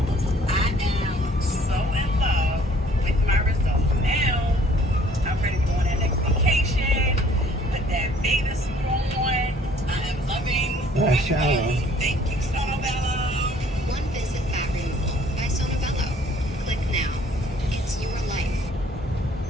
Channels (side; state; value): both; normal; correlation 0.57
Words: I am so in love with my results now. I'm ready to go on that next vacation, put that bathing suit on. I am loving everybody. Thank you, Sonobello. One visit fat removal by Sonobello. Click now. It's your life.